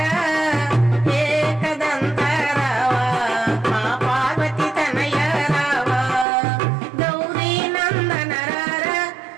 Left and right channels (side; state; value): left; drops out; at 6.2 s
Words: एकदंत रावा मा पार्वती तनय रावा। गौरी नंदन रारा